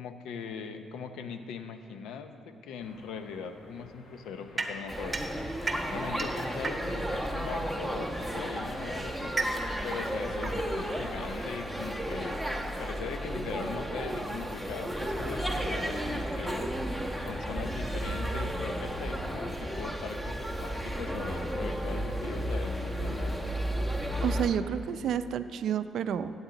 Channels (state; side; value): normal; both; correlation 0.79